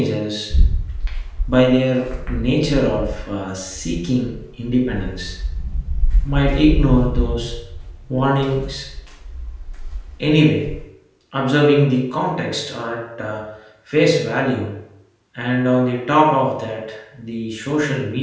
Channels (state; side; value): identical; both; correlation 1.00